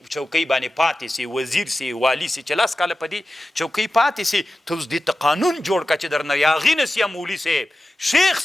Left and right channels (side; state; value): both; normal; correlation 0.94